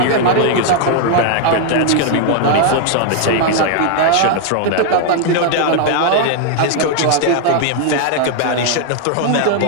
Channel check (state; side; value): different; both; correlation 0.00